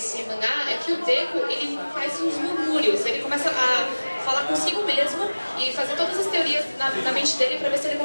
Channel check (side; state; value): both; inverted; correlation -1.00